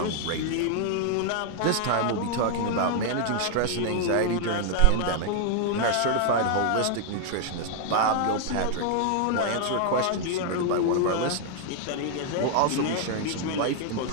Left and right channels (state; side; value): different; both; correlation 0.00